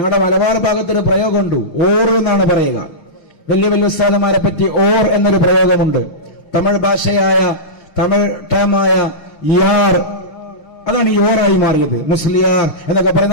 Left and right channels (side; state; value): right; late; 6.3 ms